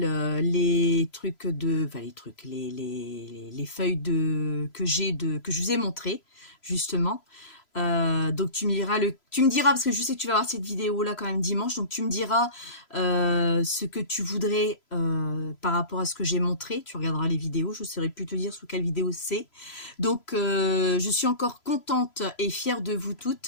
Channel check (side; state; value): right; late; 3.0 ms